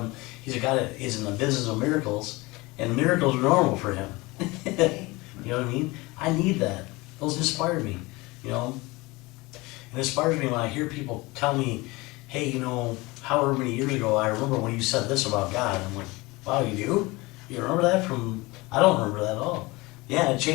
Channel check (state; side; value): quieter; right; 22.8 dB